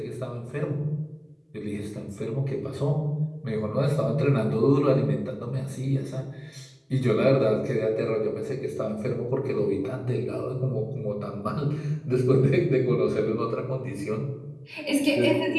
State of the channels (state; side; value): identical; both; correlation 1.00